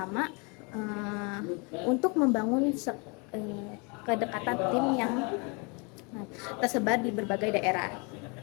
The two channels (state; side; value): quieter; right; 32.0 dB